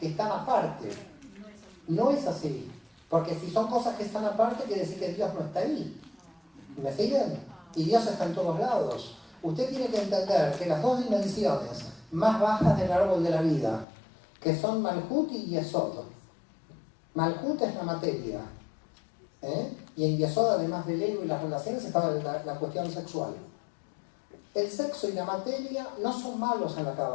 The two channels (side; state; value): right; drops out; at 13.9 s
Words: están aparte. No es así. Porque si son cosas que están aparte, quiere decir que Dios no está ahí. ¿Me siguen? Y Dios está en todos lados. Usted tiene que entender que las dos dimensiones más bajas del árbol de la vida, que son Malhut y Yesod. Malhut es la materia. Y en Yesod, además del ego y las relaciones, estaba la cuestión sexual. El sexo y la materia no son malos en la